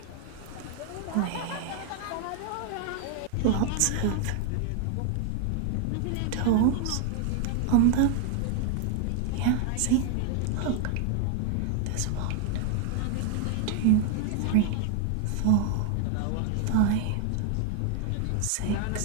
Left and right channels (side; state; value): both; different; correlation 0.00